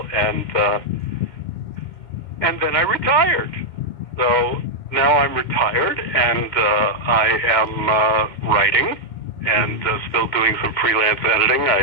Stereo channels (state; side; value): late; right; 2.2 ms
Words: and then I retired. So now I'm retired, and I am writing and still doing some freelance editing.